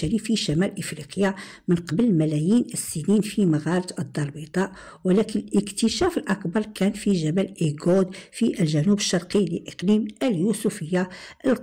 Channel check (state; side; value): identical; both; correlation 1.00